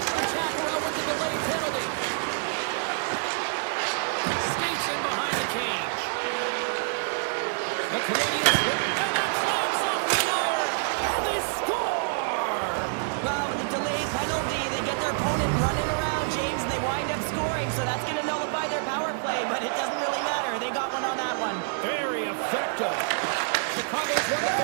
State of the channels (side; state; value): left; silent; 60 dB below the other